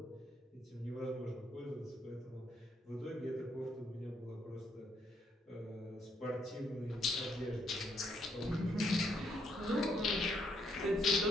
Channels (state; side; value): normal; both; correlation 0.73